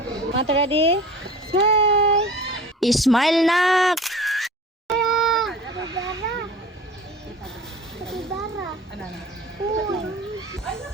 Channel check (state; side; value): normal; both; correlation 0.39